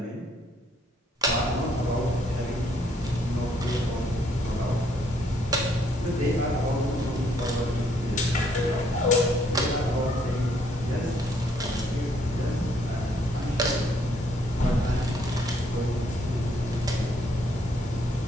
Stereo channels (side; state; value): both; normal; correlation 0.68